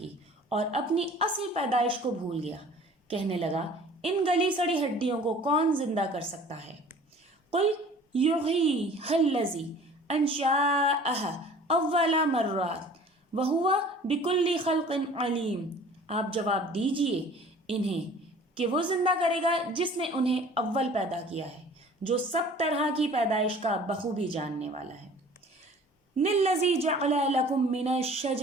اور اپنی اصل پیدائش کو بھول گیا، کہنے لگا ان گلی سڑی ہڈیوں کو کون زندہ کر سکتا ہے؟ قل یحییھا الذی انشأھا اول مرۃ وہو بکل خلق علیم، آپ جواب دیجئے انہیں کہ وہ زندہ کرے گا جس نے انہیں اول پیدا کیا ہے، جو سب طرح کی پیدائش کا بخوبی جاننے والا ہے۔ الذی جعل لکم من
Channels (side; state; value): both; normal; correlation 0.48